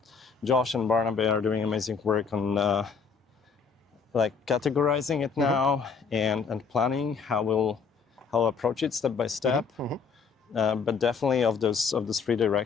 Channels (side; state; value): right; quieter; 5.6 dB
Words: Josh and Barnaby are doing amazing work on like categorizing it now and planning how approach it step by step. But definitely of those three